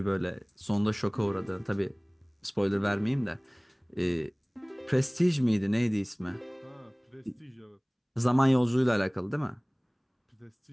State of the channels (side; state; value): both; identical; correlation 1.00